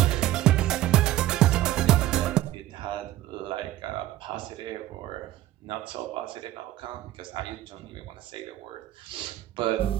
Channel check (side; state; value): left; quieter; 14.2 dB